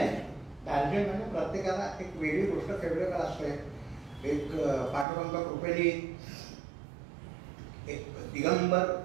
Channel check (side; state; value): left; drops out; at 5.1 s